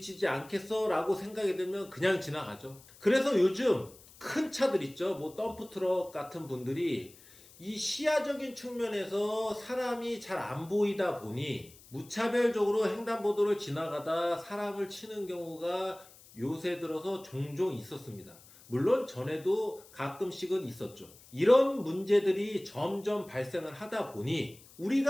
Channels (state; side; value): noise; left; hiss, 23 dB below the sound